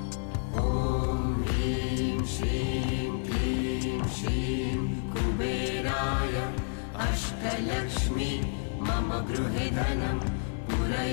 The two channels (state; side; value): silent; right; 56 dB below the other